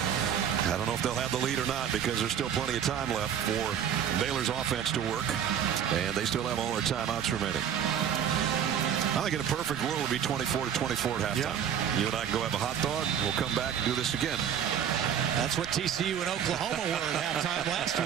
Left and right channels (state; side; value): quieter; left; 8.8 dB